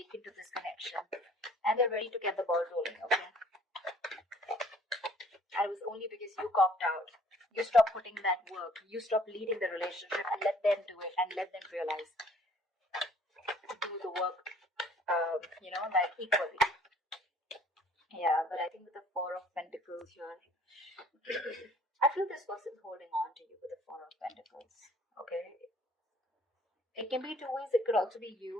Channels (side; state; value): both; normal; correlation 0.56